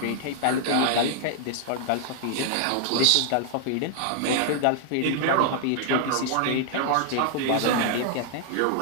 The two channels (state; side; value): different; both; correlation 0.00